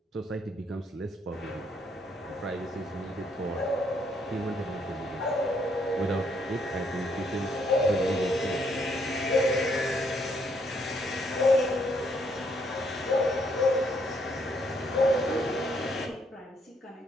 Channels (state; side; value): normal; both; correlation 0.71